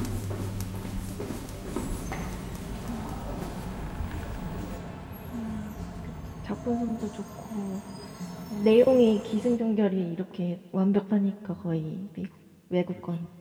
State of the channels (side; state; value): both; identical; correlation 1.00